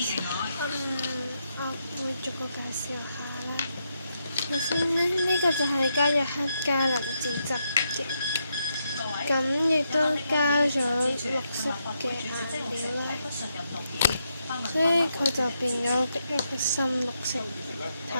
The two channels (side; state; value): both; inverted; correlation -0.81